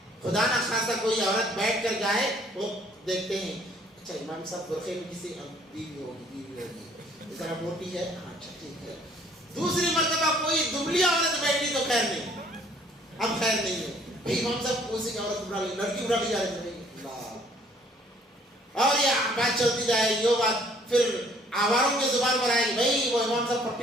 خدا نہ خاصا کوئی عورت بیٹھ کر جائے, وہ دیکھتے ہیں اچھا امام صاحب برقعے میں کسی بیوی ہوگی, اس طرح موٹی ہے, اچھا ٹھیک ہے. دوسری مرتبہ کوئی دبلی عورت بیٹھی تو خیر نہیں, اب خیر نہیں ہے بھائی, امام صاحب اسی کی عورت اٹھا لی, لڑکی اٹھا لی جا رہی ہے, اور یہ بات چلتی جائے گی. وہ بات پھر آواروں کی زبان پر آئے گی, بھائی وہ امام صاحب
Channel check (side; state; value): both; normal; correlation 0.60